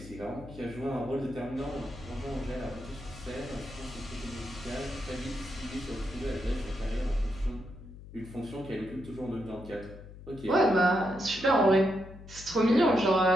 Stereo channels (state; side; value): noise; left; hum, 15 dB below the sound